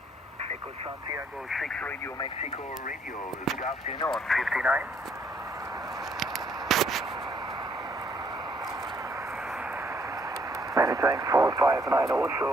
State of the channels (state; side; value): normal; both; correlation 0.67